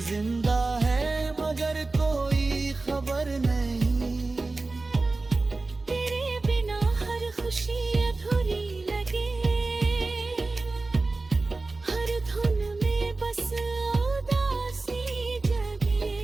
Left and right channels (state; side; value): quieter; left; 3.4 dB